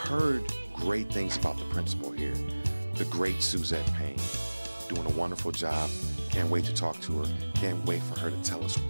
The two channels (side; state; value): both; inverted; correlation -1.00